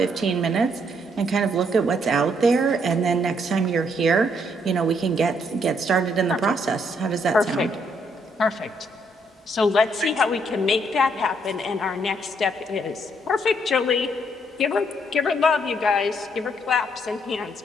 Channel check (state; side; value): normal; both; correlation 0.71